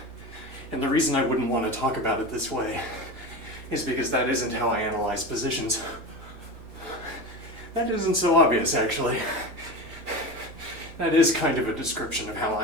And the reason I wouldn't want to talk about it this way is because that isn't how I analyze positions. That isn't so obvious, actually. That is kind of a description of how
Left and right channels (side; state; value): left; late; 4.6 ms